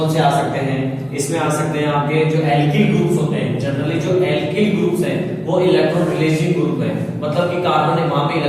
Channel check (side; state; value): both; identical; correlation 1.00